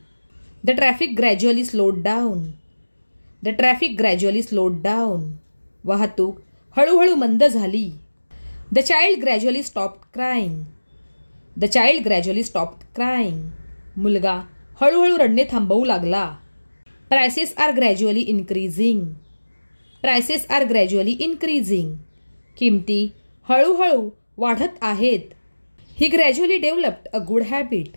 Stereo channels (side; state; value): both; inverted; correlation -1.00